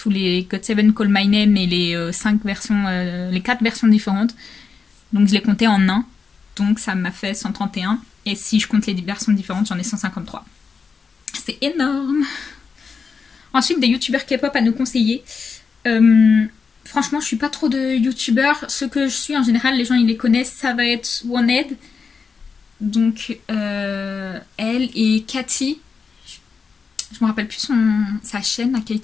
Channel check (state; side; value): quieter; right; 5.3 dB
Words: les GOT7 Call My Name et les 5 versions, les 4 versions différentes. Donc je les comptais en un. Donc ça m'a fait 131. Et si je compte les versions différentes, j'en ai 153. C'est énorme. Ensuite, des youtubeurs K-pop à nous conseiller. Franchement, je suis pas trop de youtubeurs. Ceux que je suis, en général, les gens ils les connaissent. Ça va être OneHead. Donc elle et Cathy. Je me rappelle plus sa chaîne à